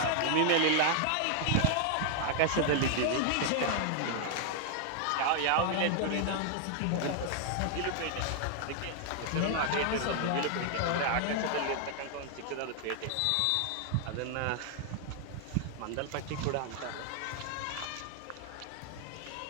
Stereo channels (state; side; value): different; both; correlation 0.00